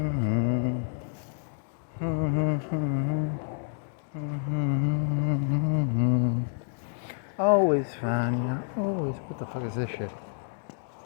Always fine, yeah. Always. What the fuck is this shit?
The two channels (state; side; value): silent; right; 59 dB below the other